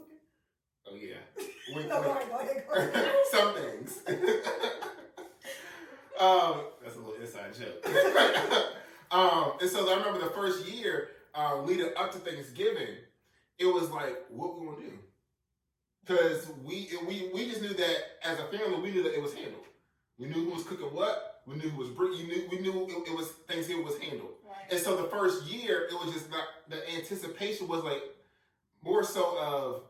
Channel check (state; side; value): identical; both; correlation 1.00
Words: Oh, yeah. Wink, No, wink. go ahead. Some things. That's a little inside joke. And so I remember the first year leading up to Thanksgiving, it was like, what we gonna do? Because we just knew that as a family, we knew that it was handled. We knew who was cooking what. We knew who was bringing. We knew it was Thanksgiving was handled. Right. And so the first year, it was just not, the anticipation was like more so of